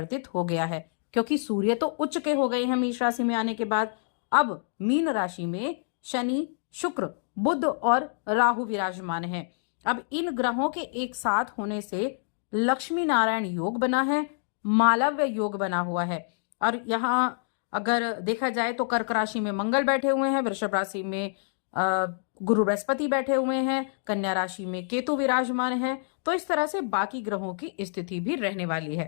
हो गया है, क्योंकि सूर्य तो उच्च के हो गए हैं मेष राशि में आने के बाद। अब मीन राशि में शनि, शुक्र, बुध और राहु विराजमान हैं। अब इन ग्रहों के एक साथ होने से लक्ष्मी नारायण योग बना है, मालव्य योग बना हुआ है। और यहाँ अगर देखा जाए तो कर्क राशि में मंगल बैठे हुए हैं, वृषभ राशि में गुरु बृहस्पति बैठे हुए हैं, कन्या राशि में केतु विराजमान है। तो इस तरह से बाकी ग्रहों की स्थिति भी रहने वाली है।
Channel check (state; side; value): silent; right; digital silence